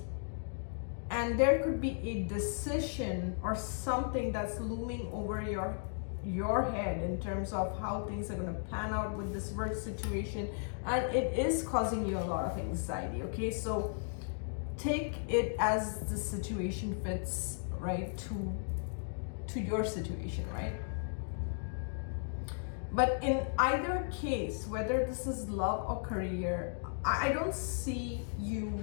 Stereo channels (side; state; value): right; silent; digital silence